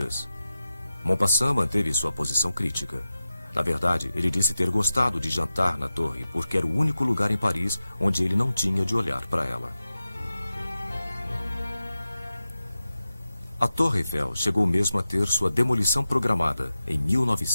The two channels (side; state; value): both; inverted; correlation -0.93